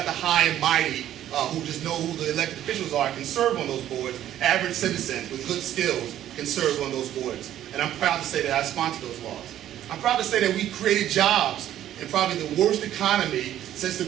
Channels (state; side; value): quieter; left; 11.9 dB